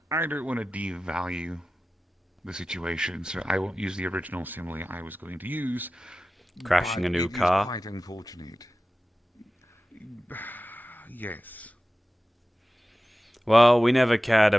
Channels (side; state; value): both; normal; correlation 0.95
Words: I don't want to devalue the situation, so I won't use the original simile I was going to use. Crashing a new it is car? quite unfortunate. Yes. Well, we never cared